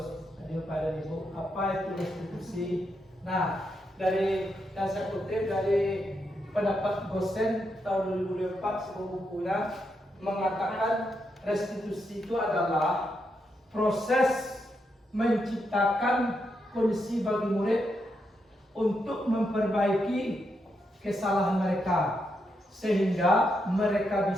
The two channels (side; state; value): both; normal; correlation 0.82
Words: Jadi Bapak dan Ibu, apa itu restitusi? Nah, dari yang saya kutip dari pendapat Gosen tahun 2004 sebuah bukunya mengatakan restitusi itu adalah proses menciptakan kondisi bagi murid untuk memperbaiki kesalahan mereka sehingga mereka